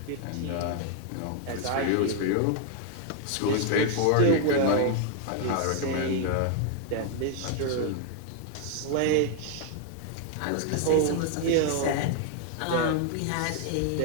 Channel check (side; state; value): both; different; correlation 0.00